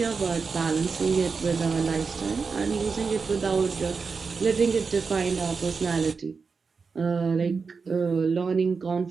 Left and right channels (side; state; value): left; quieter; 5.0 dB